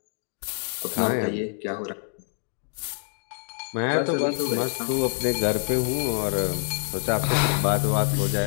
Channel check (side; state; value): right; silent; digital silence